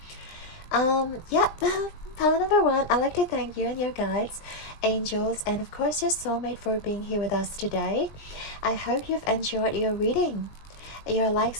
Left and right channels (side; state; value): right; late; 19 ms